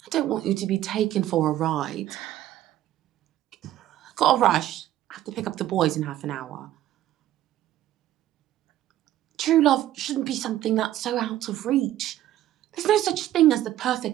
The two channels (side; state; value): left; quieter; 13.2 dB